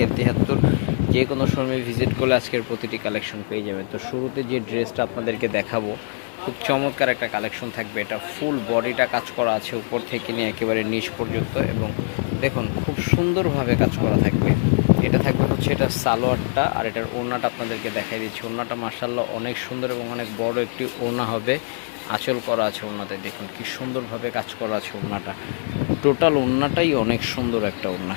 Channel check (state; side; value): silent; right; 62 dB below the other